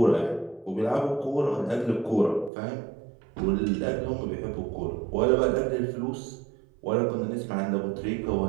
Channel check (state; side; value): drops out; left; at 2.5 s